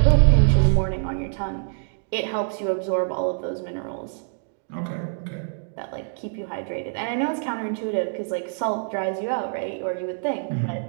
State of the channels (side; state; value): left; silent; digital silence